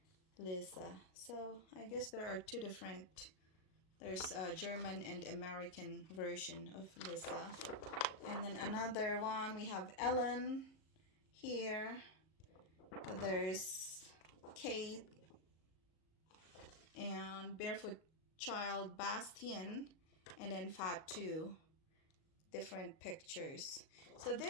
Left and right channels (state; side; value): late; right; 38 ms